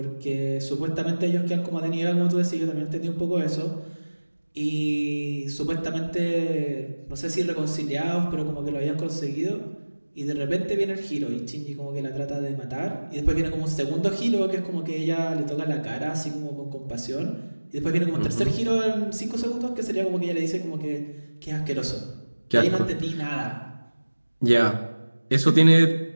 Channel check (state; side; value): inverted; both; correlation -1.00